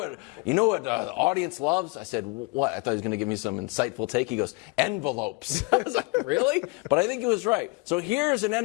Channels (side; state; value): right; quieter; 27.2 dB